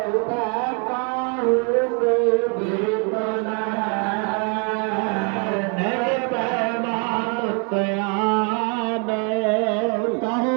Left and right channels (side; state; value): left; quieter; 35.1 dB